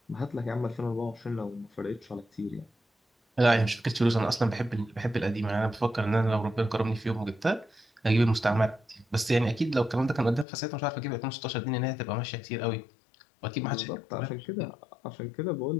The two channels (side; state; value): right; drops out; at 10.5 s